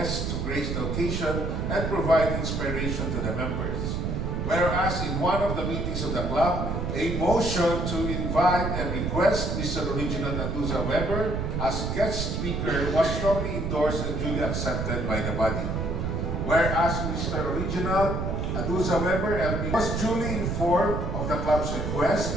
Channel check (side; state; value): right; noise; rumble, 1 dB below the sound